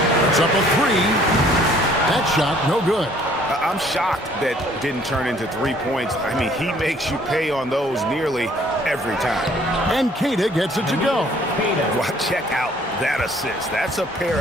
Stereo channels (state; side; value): normal; both; correlation 0.59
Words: It's up a 3. That shot, no good. I'm shocked that didn't turn into 3 points. I mean, he makes you pay on those nearly every time. And Keita gets it to go. Well, check out that assist. That's a pair